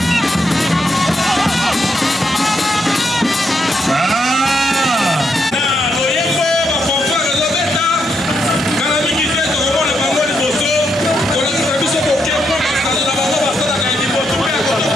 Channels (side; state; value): both; normal; correlation 0.79